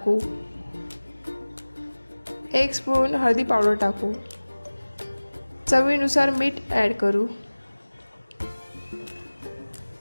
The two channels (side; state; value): both; inverted; correlation -1.00